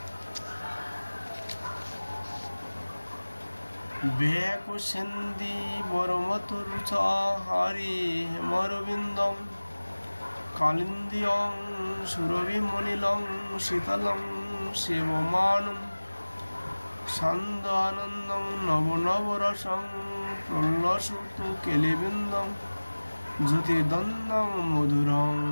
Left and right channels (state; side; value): inverted; both; correlation -1.00